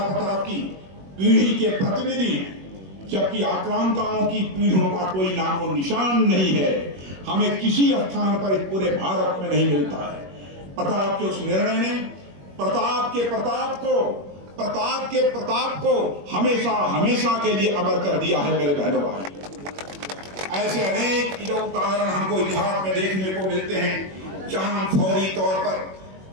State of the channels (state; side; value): late; left; 21 ms